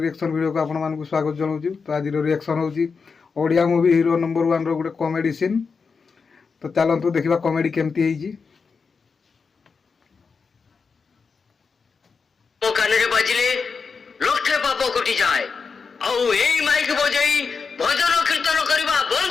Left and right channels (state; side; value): quieter; right; 5.2 dB